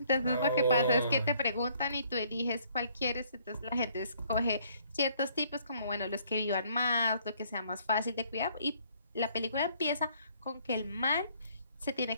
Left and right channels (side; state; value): both; inverted; correlation -0.63